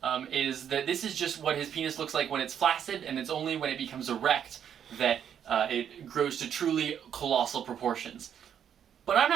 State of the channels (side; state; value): left; quieter; 8.8 dB